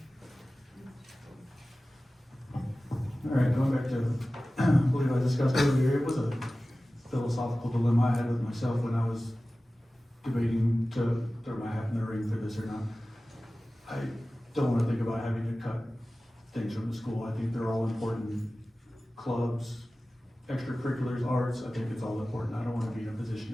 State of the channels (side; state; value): both; normal; correlation 0.96